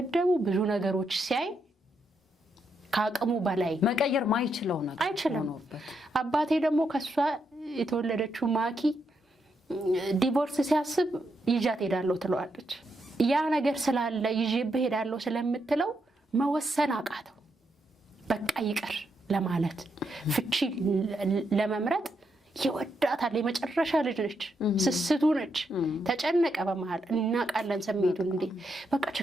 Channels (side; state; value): both; normal; correlation 0.80